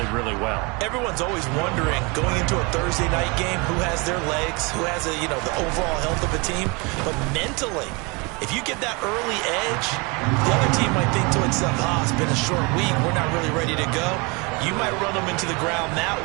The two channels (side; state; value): left; quieter; 28.7 dB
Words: really well. Everyone's always wondering, going into a Thursday night game, who has their legs, who has the overall health of a team. But mentally, if you get that early edge, the other team might think to itself, it's been a short week, we're not really ready to go. You might run them into the ground that